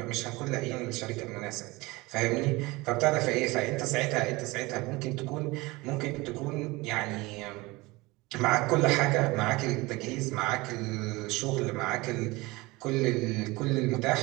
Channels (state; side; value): quieter; left; 22.3 dB